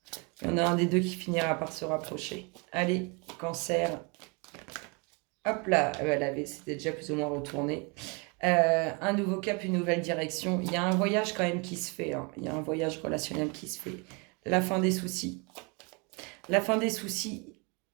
Il y en a un des deux qui finira par se rapprocher. Allez, Cancer. Hop là, c'était déjà plus ou moins retourné. Un nouveau cap, une nouvelle direction. Il y a un voyage quand même qui se fait. Il y a un voyage relationnel qui se fait. La fin des soucis. La fin des soucis.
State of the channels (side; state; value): left; quieter; 31.3 dB